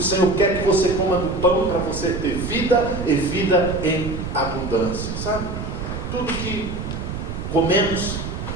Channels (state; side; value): noise; right; rumble, 6 dB below the sound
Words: quer que você coma do pão para você ter vida e vida em abundância. Sabe? Tudo que comemos